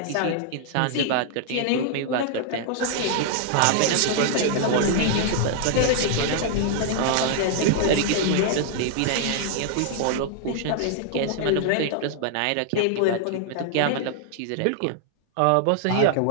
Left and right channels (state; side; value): different; both; correlation 0.00